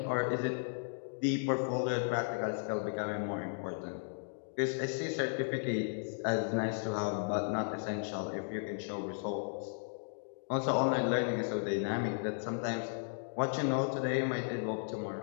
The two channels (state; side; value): silent; right; digital silence